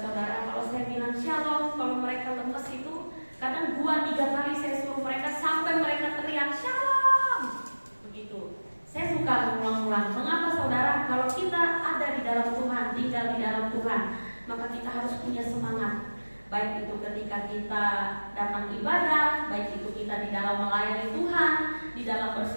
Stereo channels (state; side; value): inverted; both; correlation -1.00